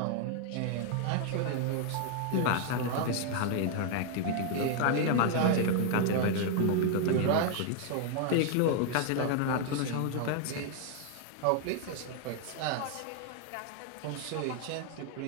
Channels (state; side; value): different; both; correlation 0.00